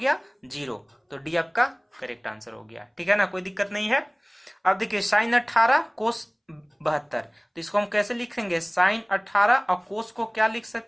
0, तो डी आपका करेक्ट आंसर हो गया, ठीक है ना, कोई दिक्कत नहीं है। अब देखिए sin 18 कोस 72, तो इसको हम कैसे लिखेंगे, sin 18 और कोस को क्या लिख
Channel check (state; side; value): identical; both; correlation 1.00